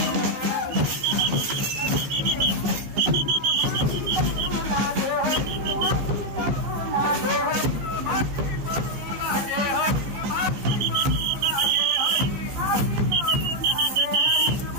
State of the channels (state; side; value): late; left; 15 ms